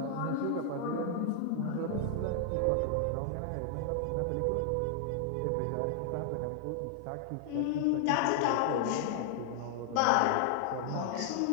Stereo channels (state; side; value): different; both; correlation 0.00